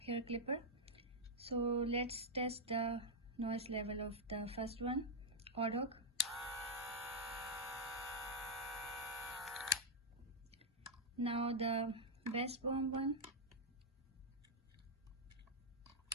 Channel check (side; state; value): both; normal; correlation -0.04